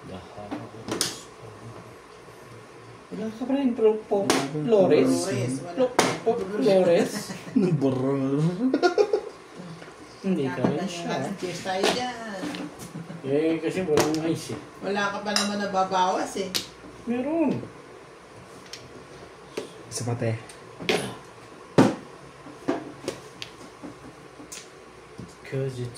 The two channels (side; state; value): both; identical; correlation 1.00